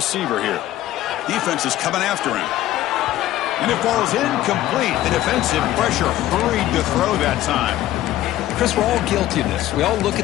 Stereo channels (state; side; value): quieter; right; 14.2 dB